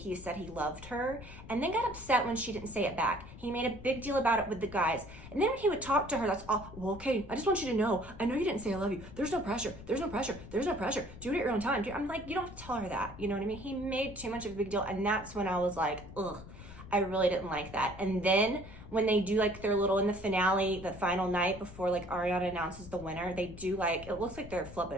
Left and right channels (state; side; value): noise; left; rumble, 15 dB below the sound